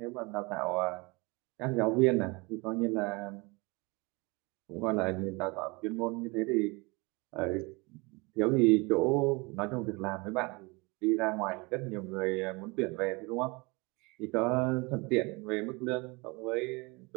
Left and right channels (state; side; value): quieter; left; 26.8 dB